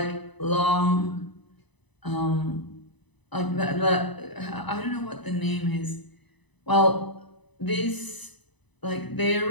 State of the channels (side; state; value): right; late; 1.0 ms